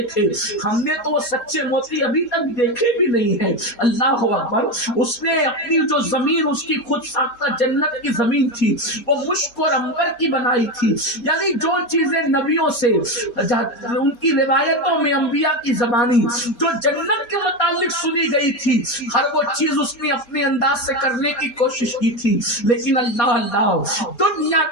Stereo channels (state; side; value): late; right; 4.2 ms